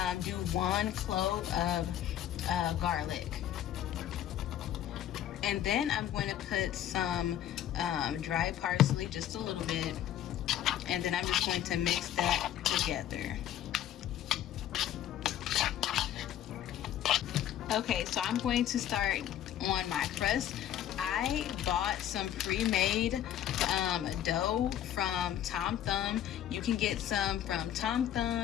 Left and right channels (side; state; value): right; quieter; 11.3 dB